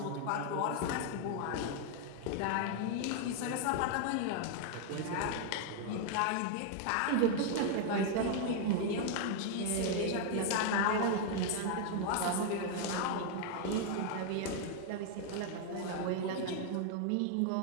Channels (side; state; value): both; different; correlation 0.00